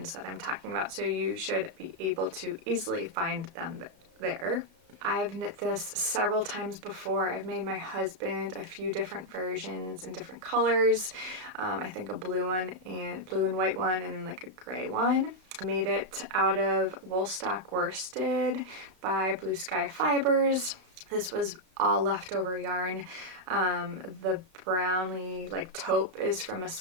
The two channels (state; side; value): late; left; 32 ms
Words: that I'm talking about, so you should be able to easily find them there. I've knit this several times before. I've made my husband a few different versions in different colors. I think a blue one and blue and white one, and then like a gray one. I made it out of Woolstock worsted by Blue Sky Fibers. This was all leftover yarn. The brownie like taupe is from a